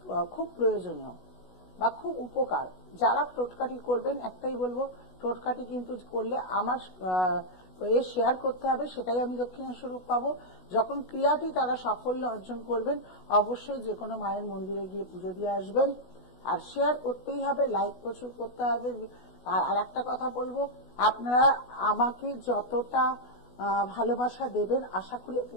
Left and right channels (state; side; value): late; right; 16 ms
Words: খুব প্রয়োজনীয় বা খুব উপকার। যারা টোটকাটি করবেন, একটাই বলবো, টোটকাটি কিন্তু করলে আমার শেয়ার করতে হবে, সেটাই আমি দক্ষিণেশ্বরূপ পাবো। যখন ক্রিয়াটি তারা সাফল্য অর্জন করবেন, অবশ্যই যে কোনো মায়ের মন্দিরে গিয়ে পুজো দিয়ে আসবেন, আর শেয়ার করতেই হবে, লাইক প্রচুর করতে হবে। আর একটা কথা বলবো, আপনারা আমাকে যতটা ভালোবাসা দেবেন আশা করি